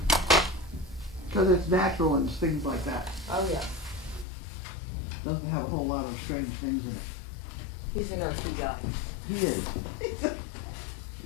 Because it's natural and things like that. Oh, yeah. Doesn't have a whole lot of strange things in it. He's an earthy guy. He is.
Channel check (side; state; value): right; drops out; at 4.2 s